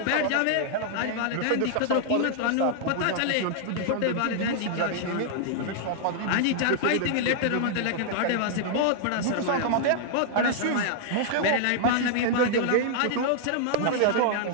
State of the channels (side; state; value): both; different; correlation -0.01